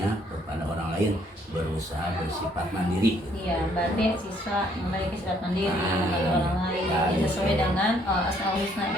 kepada orang lain, berusaha bersifat mandiri gitu. Iya, berarti siswa memiliki sifat mandiri membantu orang lain sesuai dengan Asmaul Husna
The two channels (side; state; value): both; normal; correlation 0.66